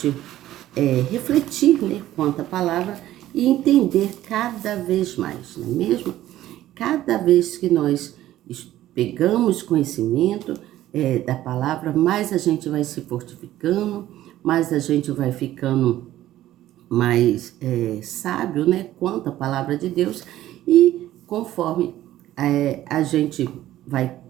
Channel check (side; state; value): left; quieter; 13.9 dB